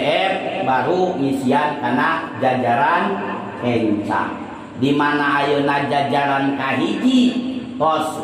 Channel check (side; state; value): both; identical; correlation 1.00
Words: baru ngisian kana jajaran kencang. Di mana ayeuna jajaran kahiji